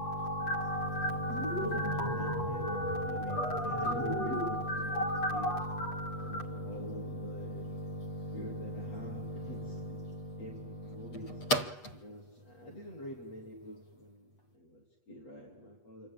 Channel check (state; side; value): late; right; 8.2 ms